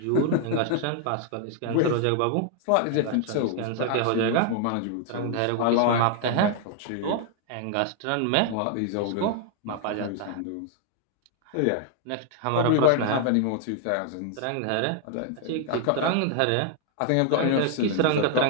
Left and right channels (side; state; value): both; different; correlation 0.00